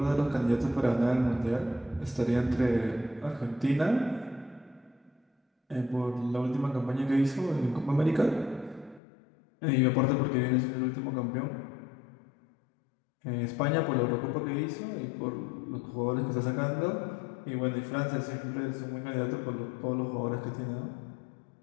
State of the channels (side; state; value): right; drops out; at 9.0 s